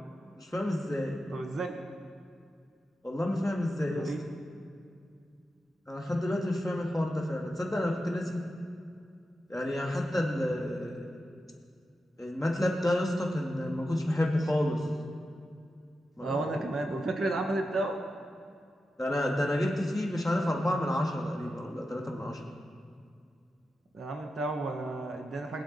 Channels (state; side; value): normal; both; correlation 0.90